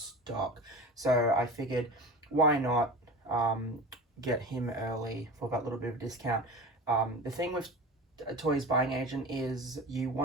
So I figured, why not get him early for that little bit of a discount. The thing with a Toys Buying Agent is you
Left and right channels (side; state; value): both; normal; correlation 0.33